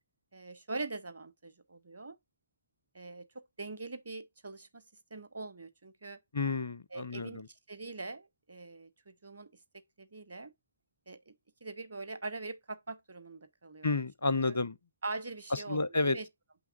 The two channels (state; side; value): inverted; both; correlation -0.72